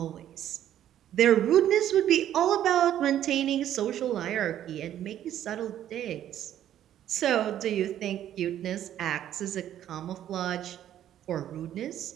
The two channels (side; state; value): left; quieter; 11.3 dB